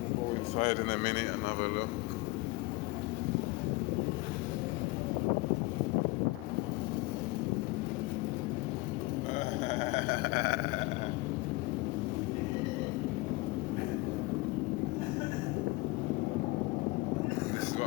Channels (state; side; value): quieter; right; 23.0 dB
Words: We'll go inside in a minute and have a look. This is